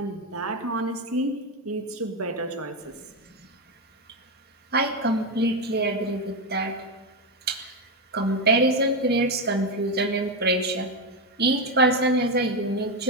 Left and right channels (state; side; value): normal; both; correlation 0.09